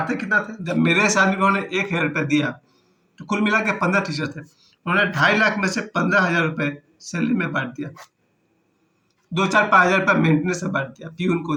कितना थे? जब मेरे साथ में उन्होंने 1,000 रुपये दिया, तो कुल मिला के 15 टीचर थे, उन्होंने 2.5 लाख में से 15,000 रुपये सैलरी में बांट दिया। 2 4 5 हज़ार रुपये मेंटेनेंस में बांट दिया, पीयून को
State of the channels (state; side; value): identical; both; correlation 1.00